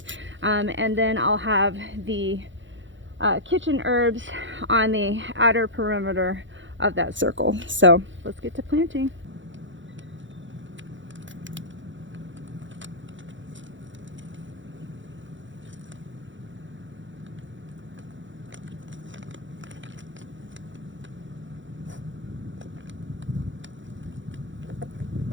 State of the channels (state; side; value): late; left; 0.55 ms